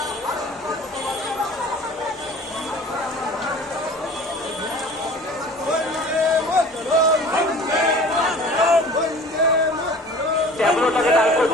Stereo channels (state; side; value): normal; both; correlation 0.44